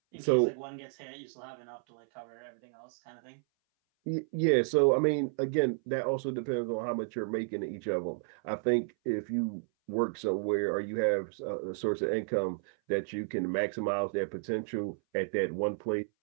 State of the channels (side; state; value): left; silent; 56 dB below the other